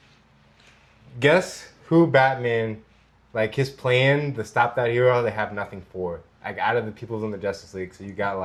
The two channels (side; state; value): both; identical; correlation 1.00